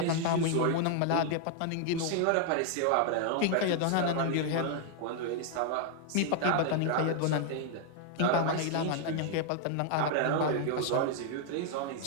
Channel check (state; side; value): different; both; correlation 0.00